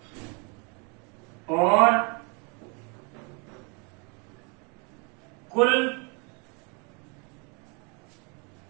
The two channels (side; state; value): left; quieter; 33.1 dB